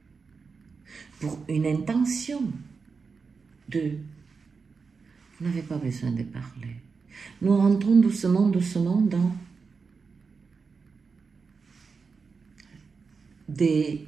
pour une intention de... Vous n'avez pas besoin de parler. Nous rentrons doucement, doucement dans des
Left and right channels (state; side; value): quieter; left; 5.0 dB